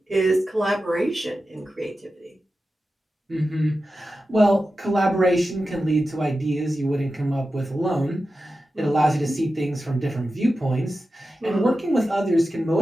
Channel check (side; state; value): both; normal; correlation 0.92